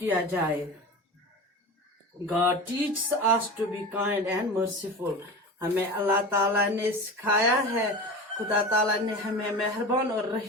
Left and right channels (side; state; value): both; normal; correlation 0.30